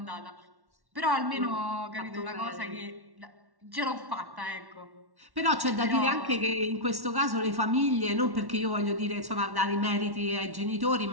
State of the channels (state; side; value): late; left; 1.1 ms